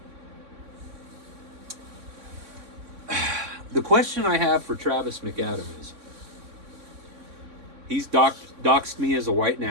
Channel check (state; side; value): late; left; 3.6 ms